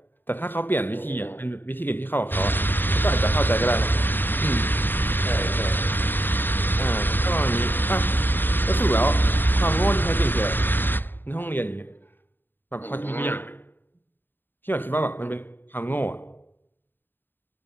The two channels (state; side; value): late; right; 0.095 ms